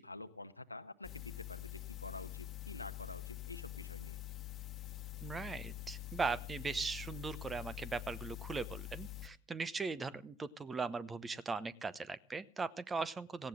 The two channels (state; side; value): normal; both; correlation 0.64